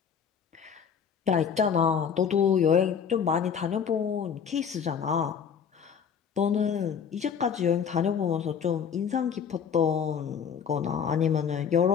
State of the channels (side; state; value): right; quieter; 7.3 dB